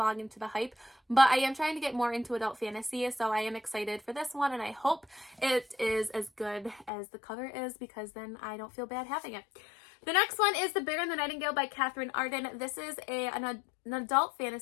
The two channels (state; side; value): drops out; right; at 6.9 s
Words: into the hype, but I am trying to get more into adult fantasy, so I am excited for this one, and I hope it is as good as the cover is, because then I don't feel bad having it. The next one is The Bear and the Nightingale by Catherine Arden. This is an adult